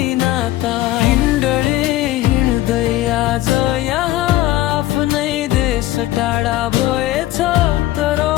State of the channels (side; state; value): right; quieter; 15.4 dB